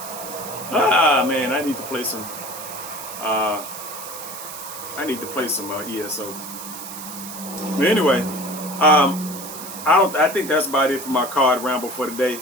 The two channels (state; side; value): noise; right; hiss, 11 dB below the sound